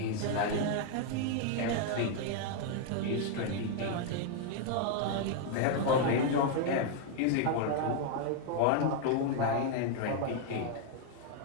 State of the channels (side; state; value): both; different; correlation 0.00